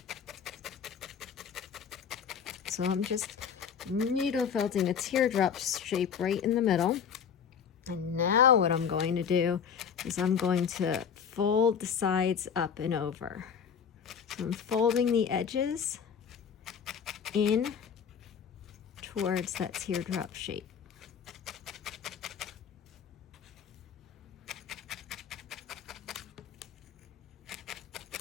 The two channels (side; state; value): right; quieter; 7.3 dB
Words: So I'm just needle felting a teardrop shape right in the middle. And now what I'm going to do is I'm going to fold the sides up and over. So I'm folding the edges in towards that teardrop shape.